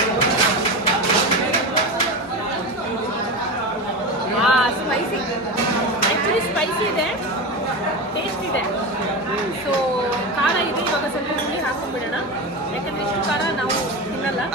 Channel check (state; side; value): normal; both; correlation 0.22